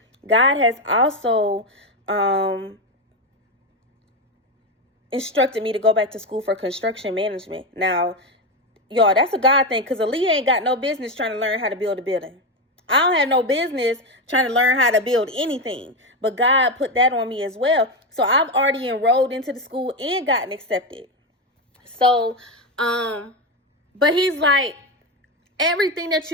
God has also instructed me to go back to school for construction management. Now, y'all, that's a God thing, because Aaliyah ain't got no business trying to learn how to build a building. I don't have no business trying to learn how to build anything, but God put that on me as well. So I've already enrolled into the school and gotten accepted. So, but he's like, everything that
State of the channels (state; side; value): normal; both; correlation 0.12